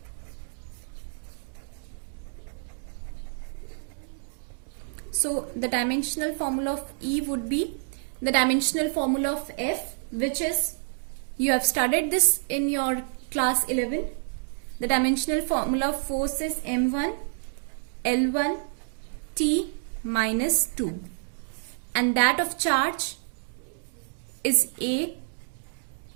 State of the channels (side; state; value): left; silent; digital silence